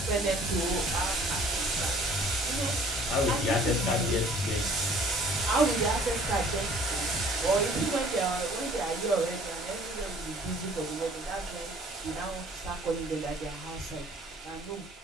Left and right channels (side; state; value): both; normal; correlation 0.54